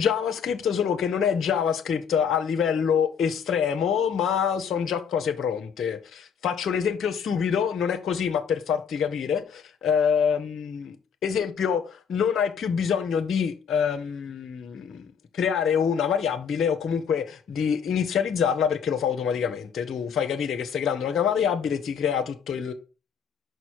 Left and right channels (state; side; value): quieter; right; 7.1 dB